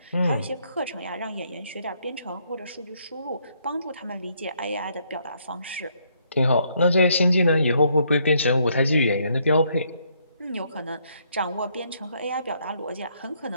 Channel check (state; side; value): inverted; both; correlation -0.71